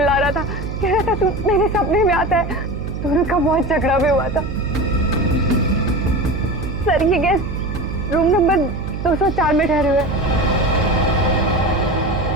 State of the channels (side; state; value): right; noise; hum, 6 dB below the sound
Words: रहा था, कह रहा था तू मेरे सपने में आता है। दोनों का बहुत झगड़ा भी हुआ था। सर ये गेस्ट रूम नंबर 204 में ठहरे हुए।